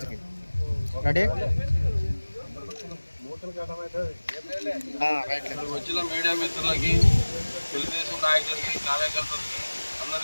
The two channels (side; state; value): both; inverted; correlation -1.00